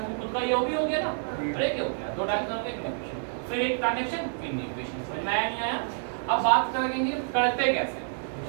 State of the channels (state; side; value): silent; left; digital silence